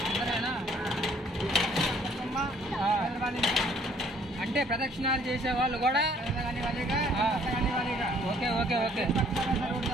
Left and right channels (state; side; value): normal; both; correlation 0.60